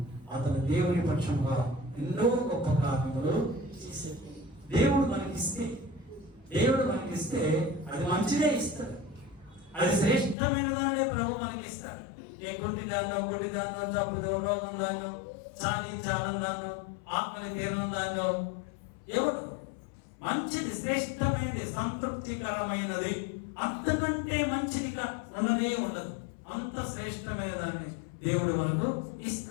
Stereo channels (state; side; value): drops out; right; at 10.4 s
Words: అతను దేవుని పక్షంగా ఎన్నో గొప్ప కార్యములు చేశాడు. దేవుడు మనకిస్తే అది మంచిదే ఇస్తాడు. అది శ్రేష్టమైన దానినే ప్రభు మనకి ఇస్తాడు. ఏ గుడ్డి దాన్నో జబ్బుదో రోగం దాన్నో చాలం దాన్నో ఆత్మని తీరం దాన్నో ఎవరు మంచిది, శ్రేష్టమైనది, సంతృప్తికరమైనది, అంతకంటే మంచిదిగా ఉండనే ఉండదు. అంత శ్రేష్టమైన దాన్ని దేవుడు మనకు